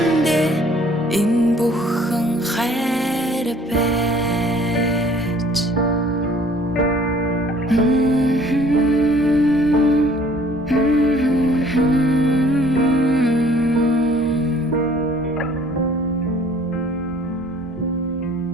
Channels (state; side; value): normal; both; correlation 0.55